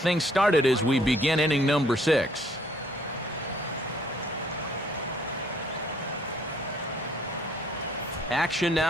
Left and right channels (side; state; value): both; normal; correlation 0.63